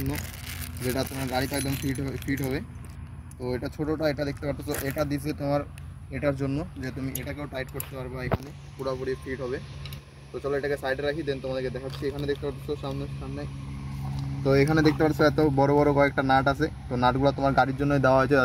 যেটা তোমার গাড়িতে একদম ফিট হবে। তো এটা ছোটোটা, এটা দেখতে পাচ্ছ, এটা দিছে তোমার এটার জন্য যে তুমি এটাকেও টাইট করতে পারবে, এখানে পুরোপুরি ফিট হবে। তো চলো এটাকে সাইডে রাখি, দেন তোমাদেরকে দেখাচ্ছি। এখানে দেখতে পাচ্ছ সামনে, তো এখানে দেখতে পাচ্ছ এত বড় বড় কয়েকটা নাট আছে। তো নাটগুলো তোমার গাড়ির জন্যই দেওয়া হয়েছে,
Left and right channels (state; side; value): identical; both; correlation 1.00